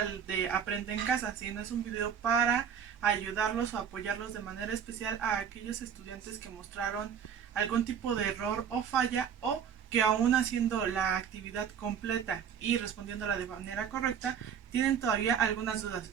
de Aprende en Casa, sino es un video para ayudarlos o apoyarlos de manera especial a aquellos estudiantes que mostraron algún tipo de error o falla, o que aún haciendo la actividad completa y respondiéndola de manera correcta, tienen todavía algunas dudas.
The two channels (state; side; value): quieter; left; 7.9 dB